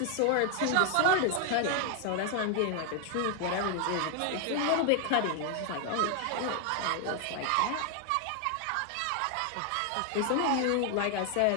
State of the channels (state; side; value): different; both; correlation 0.00